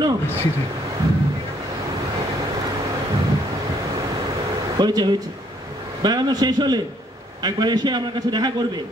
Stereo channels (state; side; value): normal; both; correlation 0.66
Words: হয়েছে হয়েছে, বেড়ানো শেষ হলে একবার এসে আমার কাছে দেখা করবে